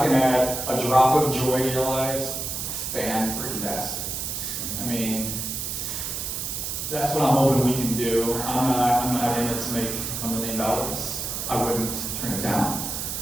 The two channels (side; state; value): right; noise; hiss, 4 dB below the sound